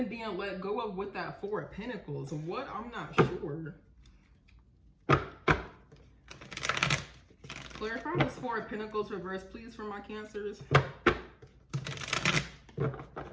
being let go of with that Four of Pentacles. What? I'm not sure. Clarify this Four of Pentacles reverse, please, for my Cancers.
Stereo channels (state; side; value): identical; both; correlation 1.00